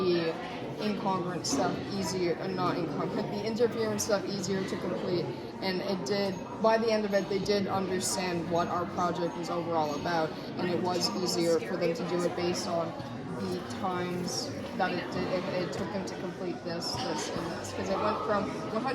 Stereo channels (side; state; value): both; identical; correlation 1.00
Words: incongruent stuff easier, not incongruent, the interference stuff easier to complete. And it did, by the end of it, they did understand what our project was overall about, and it was easier for them to do it based on the times that it took them to complete this, and this. Because it went from